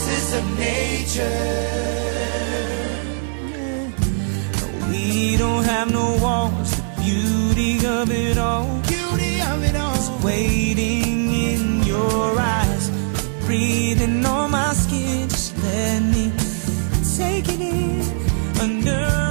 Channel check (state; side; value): silent; left; digital silence